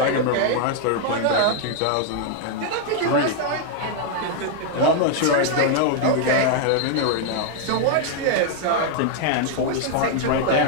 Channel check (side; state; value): both; different; correlation 0.00